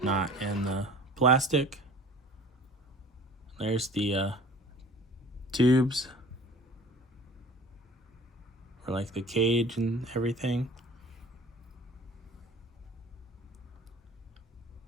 not in the plastic. There's the tubes for like the cage and everything.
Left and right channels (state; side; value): normal; both; correlation 0.45